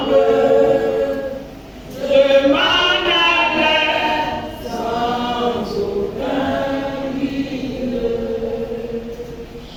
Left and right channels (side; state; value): both; identical; correlation 1.00